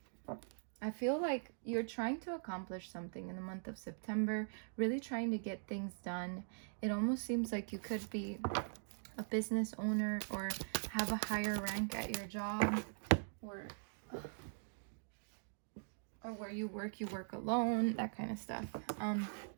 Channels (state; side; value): silent; left; digital silence